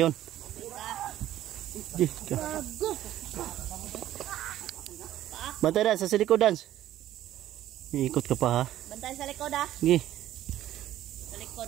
Bantay Dan, sa likod Dan. Iikot ka pa ha. Bantay sa likod ah. Sige. Sa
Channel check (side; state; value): left; quieter; 13.1 dB